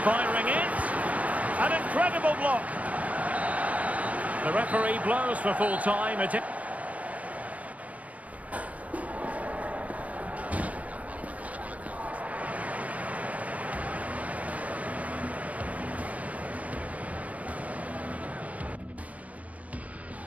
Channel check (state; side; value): late; left; 0.069 ms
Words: firing it. An incredible block. The referee blows for full time.